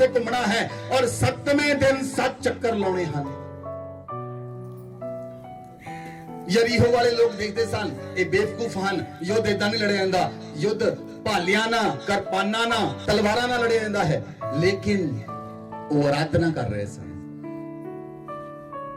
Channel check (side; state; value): both; identical; correlation 1.00